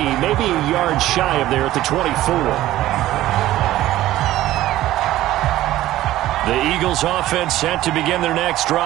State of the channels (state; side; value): quieter; left; 14.9 dB